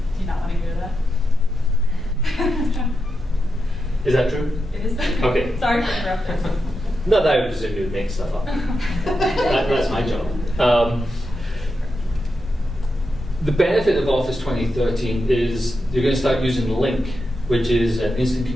Do you not want to go to that? Is that true? It is. Okay. Sorry for interrupting. No, that would presume you would make stuff up. That's my job. The benefit of Office 2013 is you're going to start using Link, which is an instant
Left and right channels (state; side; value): normal; both; correlation 0.87